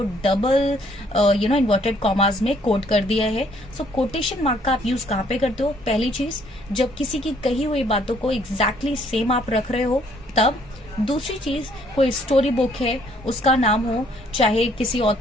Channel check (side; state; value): both; normal; correlation 0.64